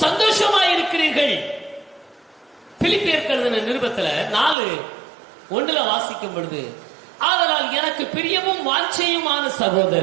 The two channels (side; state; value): left; drops out; at 4.5 s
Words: சந்தோஷமாய் இருக்கிறீர்கள். பிலிப்பியருக்கு எழுதின நிருபத்துல 4:1 வாசிக்கும் பொழுது, ஆதலால் எனக்கு பிரியமும் வாஞ்சையுமான